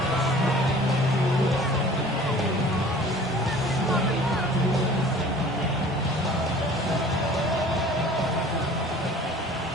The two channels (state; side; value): normal; both; correlation 0.47